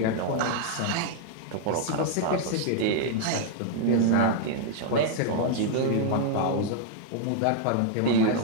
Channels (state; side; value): different; both; correlation 0.00